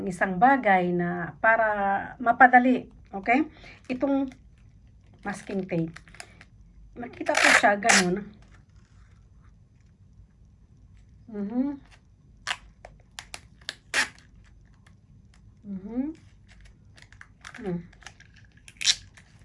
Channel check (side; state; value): both; identical; correlation 1.00